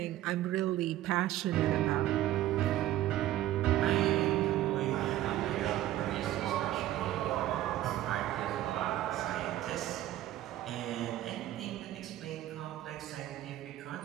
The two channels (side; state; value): left; quieter; 14.0 dB